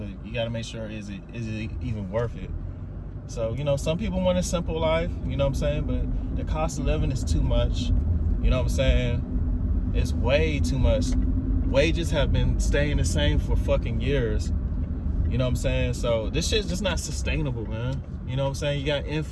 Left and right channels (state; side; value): identical; both; correlation 1.00